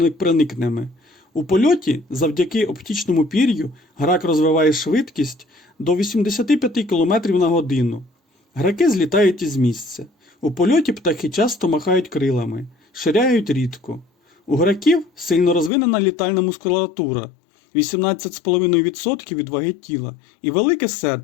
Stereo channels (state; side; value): drops out; right; at 15.7 s